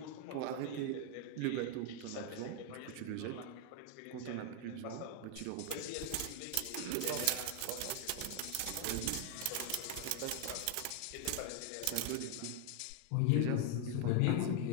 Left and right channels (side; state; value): both; different; correlation 0.00